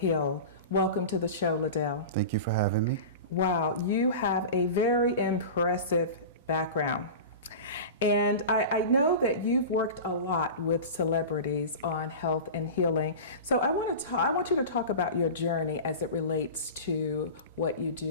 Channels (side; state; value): both; inverted; correlation -0.30